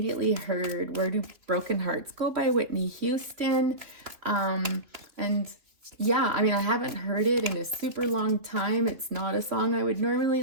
heard Where Do Broken Hearts Go by Whitney Houston. And yeah, I mean, I haven't heard it in a super long time. It's not a song I would normally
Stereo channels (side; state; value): left; late; 3.0 ms